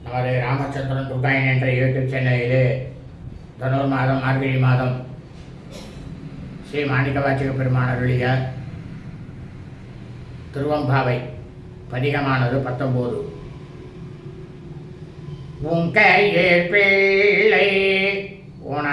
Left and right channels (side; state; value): both; identical; correlation 1.00